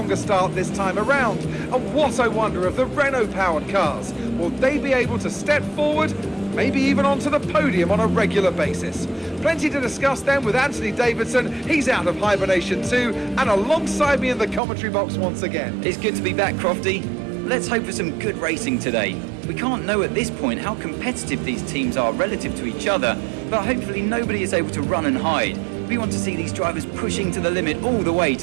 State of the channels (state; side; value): drops out; left; at 14.6 s